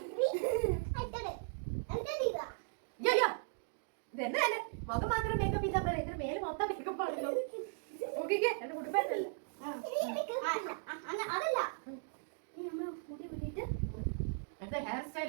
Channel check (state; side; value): silent; left; digital silence